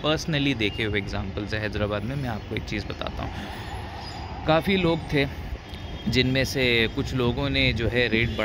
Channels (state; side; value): identical; both; correlation 1.00